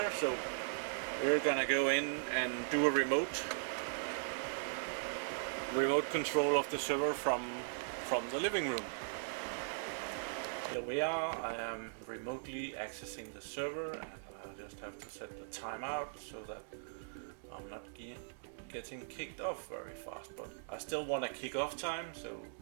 so we're gonna go in and do a remote control of the server from the living room. Here we are. I am remotely accessing the server, and I just have to set the timeout so that I'm not getting kicked off very fast, but I still want a kick-off time, so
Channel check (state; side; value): silent; left; 52 dB below the other